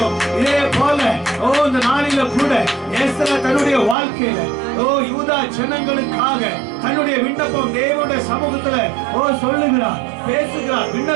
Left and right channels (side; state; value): left; drops out; at 4.0 s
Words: இதே போல இந்த நாளில கூட எஸ்தர் தன்னுடைய வாழ்க்கையில யூதா ஜனங்களுக்காக தன்னுடைய விண்ணப்பம் தேவனுடைய சமூகத்துல சொல்லுகிறார், பேசுகிறார்,